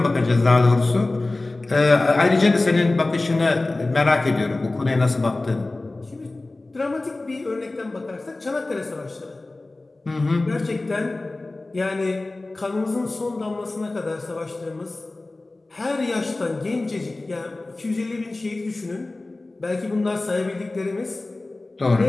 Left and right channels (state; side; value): quieter; right; 3.0 dB